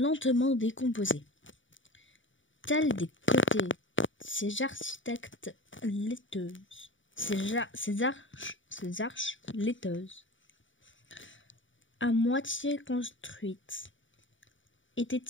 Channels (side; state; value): right; late; 0.56 ms